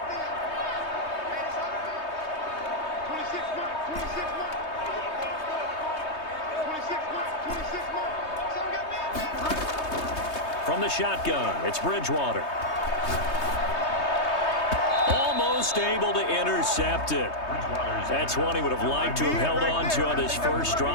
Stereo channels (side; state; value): right; late; 3.2 ms